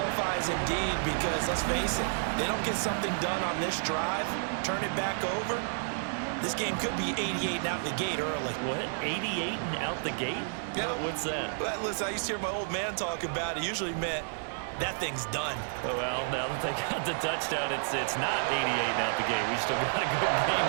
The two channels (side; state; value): left; silent; digital silence